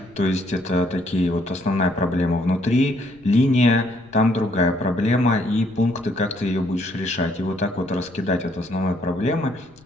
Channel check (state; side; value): noise; left; rumble, 27 dB below the sound